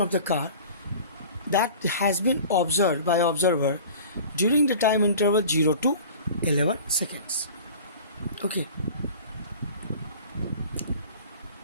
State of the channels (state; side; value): inverted; both; correlation -0.42